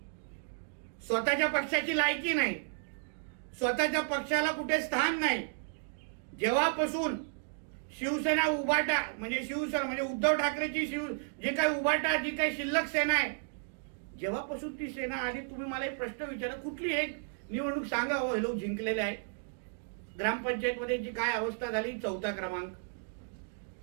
स्वतःच्या पक्षाची लायकी नाही, स्वतःच्या पक्षाला कुठे स्थान नाही. जेव्हापासून शिवसेना उभाटा म्हणजे शिवसेना म्हणजे उद्धव ठाकरेची जी काही उभाटा जी काही शिल्लक सेना आहे, जेव्हापासून ती सेना आली, तुम्ही मला एक प्रश्न विचारा, कुठली एक निवडणूक सांगा हो हे लोक जिंकलेले आहे? ग्रामपंचायत मध्ये जी काय अवस्था झाली, 4था क्रमांक.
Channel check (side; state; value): left; silent; digital silence